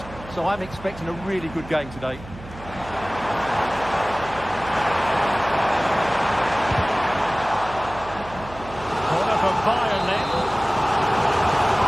so I'm expecting a really good game today. Corner for Bayern then.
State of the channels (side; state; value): right; noise; hum, 15 dB below the sound